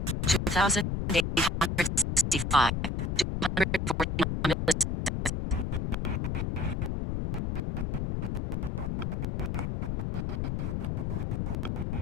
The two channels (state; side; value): noise; left; rumble, 1 dB below the sound